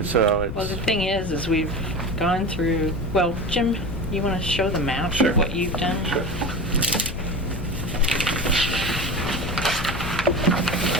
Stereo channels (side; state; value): left; noise; rumble, 6 dB below the sound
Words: so Well, the it's, thing is we've gone through, well, Jim, you want to show the map Sure. of what you've done? Sure.